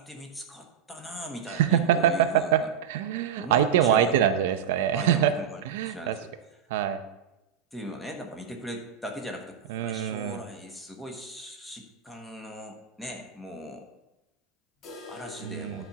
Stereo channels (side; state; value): left; quieter; 8.2 dB